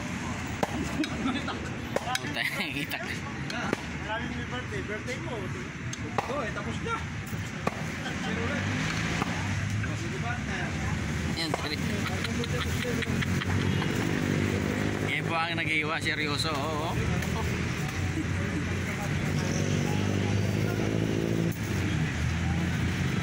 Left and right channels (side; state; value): both; identical; correlation 1.00